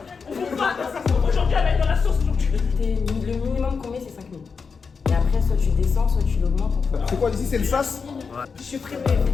On ne pas. Aujourd'hui, elle va être dans la sauce aujourd'hui. Le minimum qu'on met, c'est 5 000. Et après, soit tu descends, soit tu l'augmentes. C'est quoi ici? C'est le sas? Je supprime les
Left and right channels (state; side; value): quieter; right; 5.3 dB